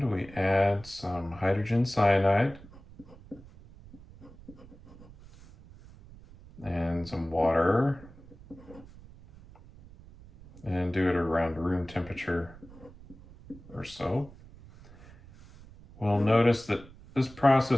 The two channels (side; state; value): right; noise; rumble, 20 dB below the sound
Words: we add some hydrogen cyanide and some water, and do it around room temperature or so, we'll notice that this